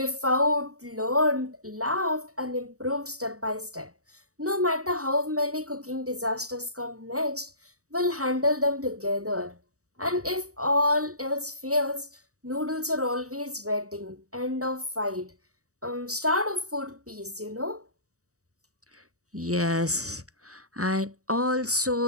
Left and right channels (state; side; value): late; left; 0.66 ms